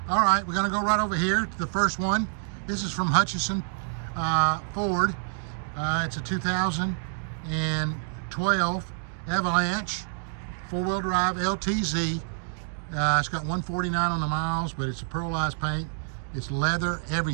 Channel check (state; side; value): silent; left; digital silence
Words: All right, we're going to go right over here to the first one. This is from Hutchinson Ford. It's a 2012 Avalanche, four-wheel drive LTZ. It's got 149 on the miles, but it's a pearlized paint. It's leather,